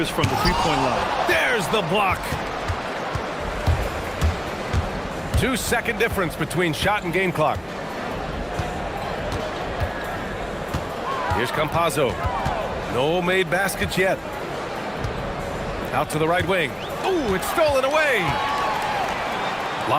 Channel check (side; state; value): both; identical; correlation 1.00